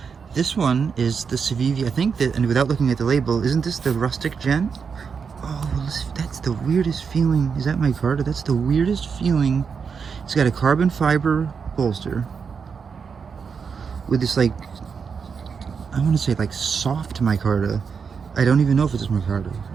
This one is the Civivi. I think that, and without looking at the label, isn't this the Rustic Gent? Oh, that's the weirdest feeling. Is that micarta? That's the weirdest feeling. It's got a carbon fiber bolster with this, like, I want to say like soft micarta. I don't even know if it's micarta.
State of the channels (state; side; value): quieter; left; 6.0 dB